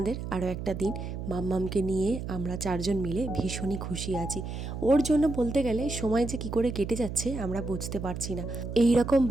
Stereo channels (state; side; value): noise; right; hum, 6 dB below the sound